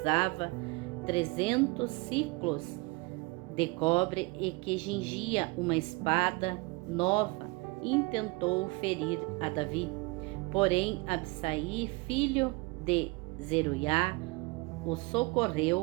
300 ciclos de cobre e que cingia uma espada nova, intentou ferir a Davi. Porém, Absai, filho de Zeruiá, o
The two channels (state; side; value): quieter; left; 25.3 dB